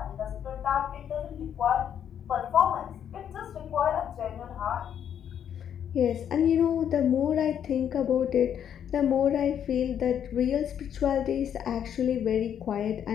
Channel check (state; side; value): quieter; right; 9.1 dB